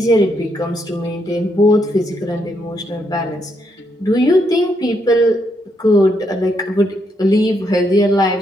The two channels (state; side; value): normal; both; correlation 0.77